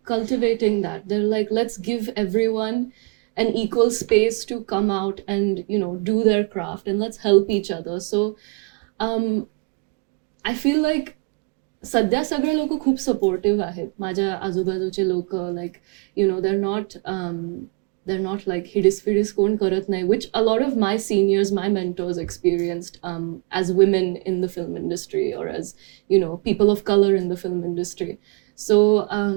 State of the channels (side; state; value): left; quieter; 32.1 dB